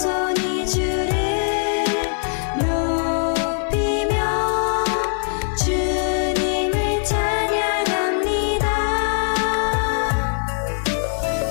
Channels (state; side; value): silent; right; digital silence